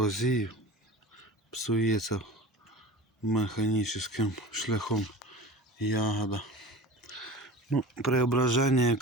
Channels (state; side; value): normal; both; correlation 0.37